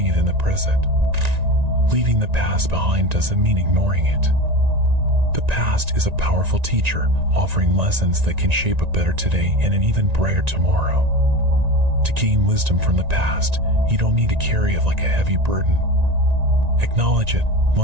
it in the present. Leaving the past behind doesn't mean ignoring it. The past is a powerful teacher, offering lessons that can shape a better today and an even brighter tomorrow. To gain wisdom from the past, you don't need to carry it like a heavy burden. Acknowledge it,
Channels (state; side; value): late; left; 1.9 ms